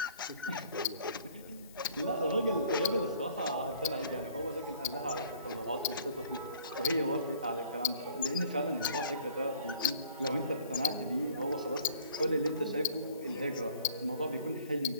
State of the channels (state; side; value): inverted; both; correlation -0.55